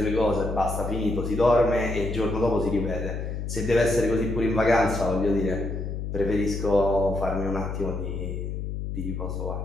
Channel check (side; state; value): left; noise; hum, 4 dB below the sound